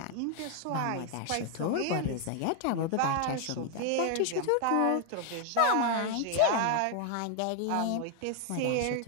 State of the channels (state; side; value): different; both; correlation 0.00